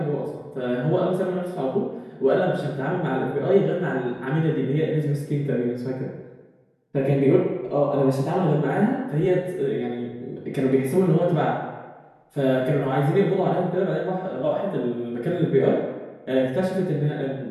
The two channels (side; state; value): both; identical; correlation 1.00